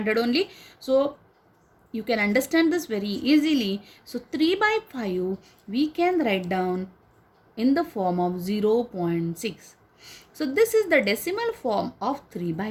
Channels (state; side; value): identical; both; correlation 1.00